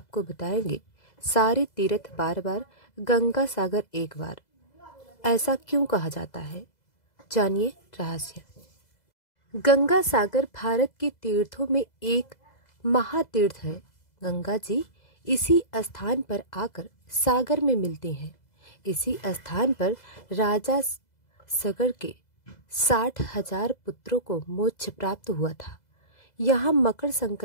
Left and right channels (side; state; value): right; late; 2.0 ms